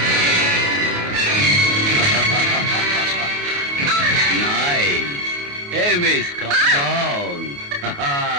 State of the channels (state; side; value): late; left; 28 ms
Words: Hey, miss, calm down.